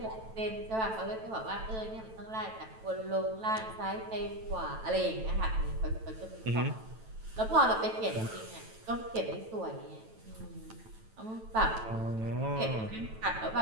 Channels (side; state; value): left; late; 9.1 ms